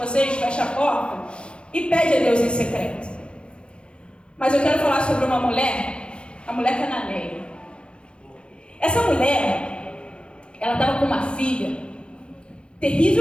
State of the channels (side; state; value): right; late; 0.056 ms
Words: fecha a porta e pede a Deus em secreto. Mas eu quero falar sobre uma mulher, a mulher cananeia. Essa mulher, ela estava com uma filha